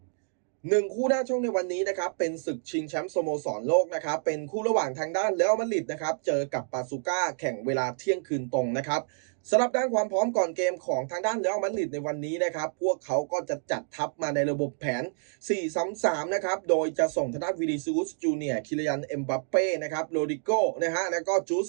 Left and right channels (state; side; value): silent; left; digital silence